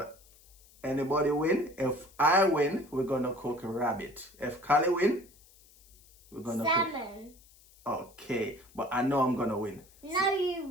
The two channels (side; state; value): left; noise; hiss, 27 dB below the sound